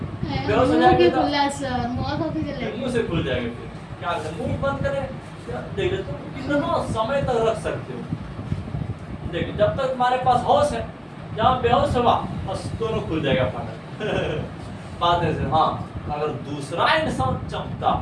बेहोश हो जाएगी तो मुंह से खुल जाएगा। फिर क्या करें, मुंह बंद करें, देख तुम कितना समय तक रख सकते हो। देखिए, जब तक तुम्हारे पास होश है, जहाँ बेहोश हुआ बस दोनों खुल जाएगा फाटक। बात है, हाँ, अगर दूसरा इंसान चमकता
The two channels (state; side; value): identical; both; correlation 1.00